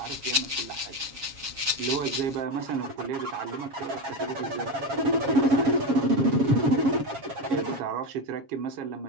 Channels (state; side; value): late; left; 7.3 ms